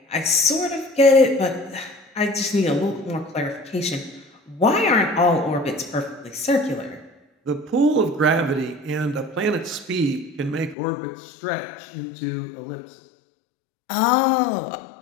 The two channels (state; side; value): drops out; right; at 10.8 s